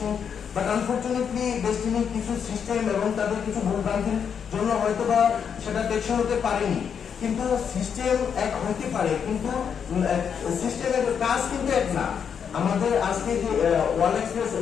বাট আনফরচুনেটলি ডেস্টিনির কিছু সিস্টেম এবং তাদের কিছু ভুলভ্রান্তির জন্য হয়তো বা সেটা টেকসই হতে পারেনি। কিন্তু সিস্টেম এক হতে পারে, কিন্তু সিস্টেমের কাজ কিন্তু এক না। আমাদের আজকে যে ওয়ার্ল্ড এক্সপ্রেস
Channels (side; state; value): right; quieter; 7.3 dB